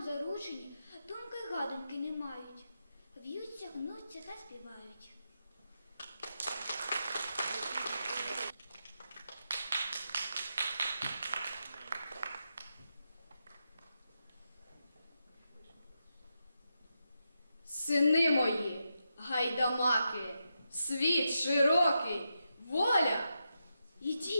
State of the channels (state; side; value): inverted; both; correlation -0.86